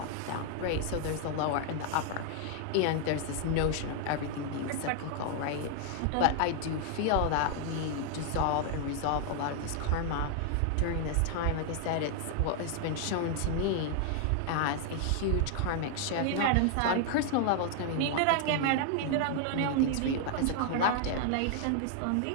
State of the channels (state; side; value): different; both; correlation 0.00